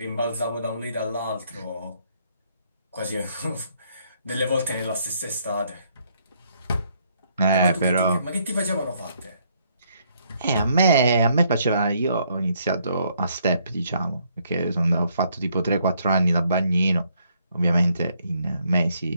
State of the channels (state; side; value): inverted; both; correlation -0.70